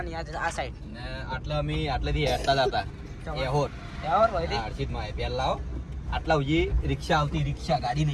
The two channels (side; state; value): both; identical; correlation 1.00